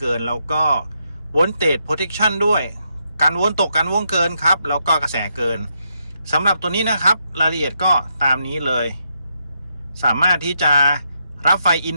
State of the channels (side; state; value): both; inverted; correlation -0.80